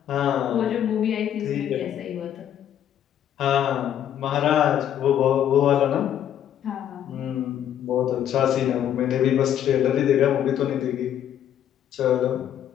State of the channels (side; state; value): right; quieter; 10.3 dB